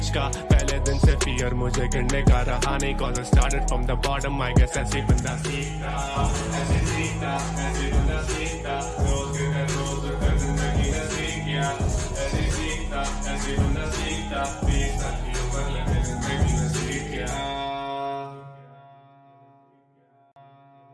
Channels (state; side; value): identical; both; correlation 1.00